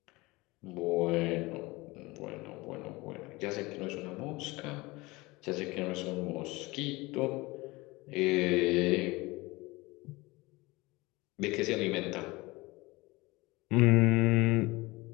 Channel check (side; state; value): right; quieter; 22.3 dB